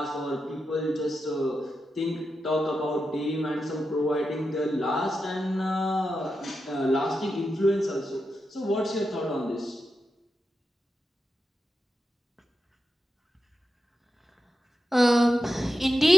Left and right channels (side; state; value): both; normal; correlation 0.89